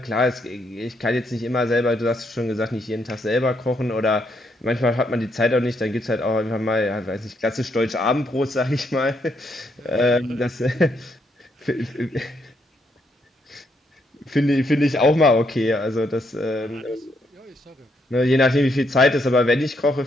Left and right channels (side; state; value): both; normal; correlation 0.75